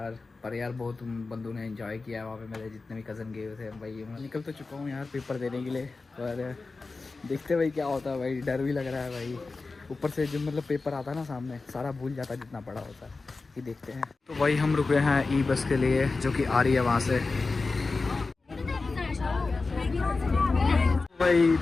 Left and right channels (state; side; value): quieter; right; 3.9 dB